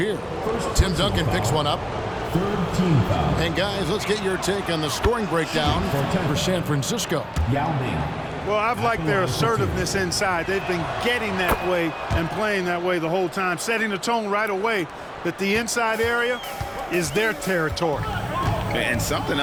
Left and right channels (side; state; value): both; identical; correlation 1.00